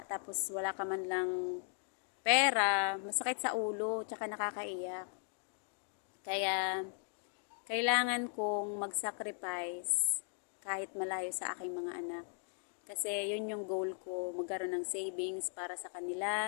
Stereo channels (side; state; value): right; silent; 53 dB below the other